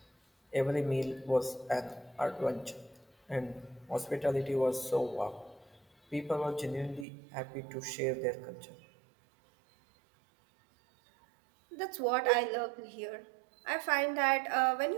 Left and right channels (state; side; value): drops out; left; at 7.1 s